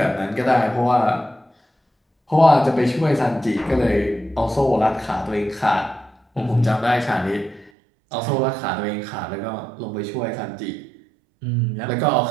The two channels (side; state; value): left; drops out; at 7.7 s